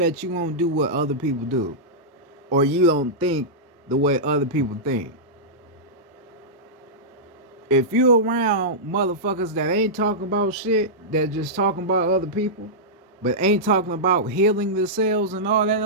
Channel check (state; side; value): normal; both; correlation -0.12